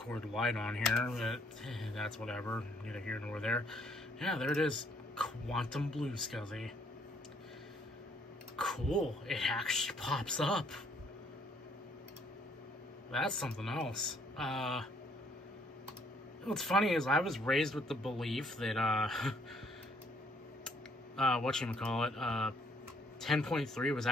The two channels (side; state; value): both; normal; correlation 0.66